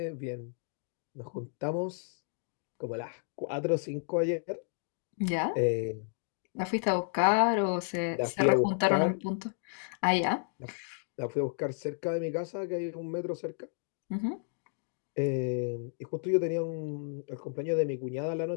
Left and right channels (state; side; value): silent; right; digital silence